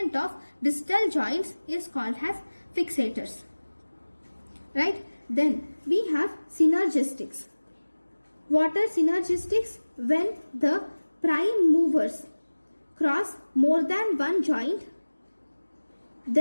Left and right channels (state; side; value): inverted; both; correlation -1.00